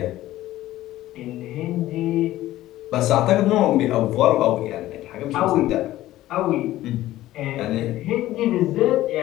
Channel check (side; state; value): right; quieter; 15.2 dB